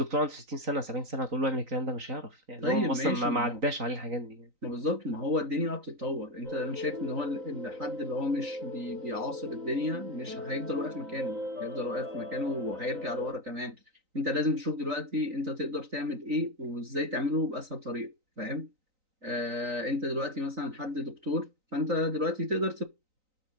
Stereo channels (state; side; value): late; left; 3.9 ms